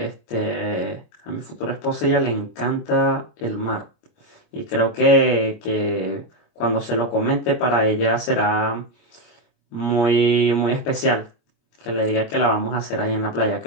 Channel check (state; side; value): late; right; 25 ms